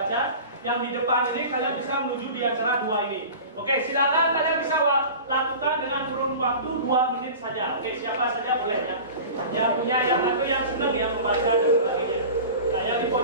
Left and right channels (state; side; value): inverted; both; correlation -0.36